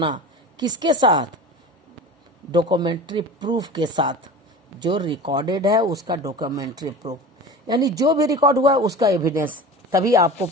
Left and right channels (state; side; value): normal; both; correlation 0.34